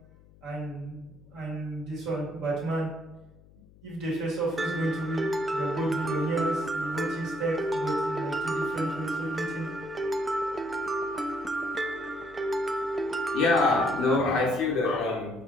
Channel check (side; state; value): left; noise; hum, 25 dB below the sound